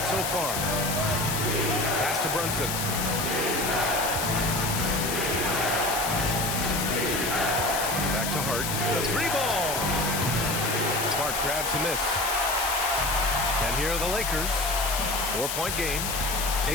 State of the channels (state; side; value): noise; left; hiss, 2 dB below the sound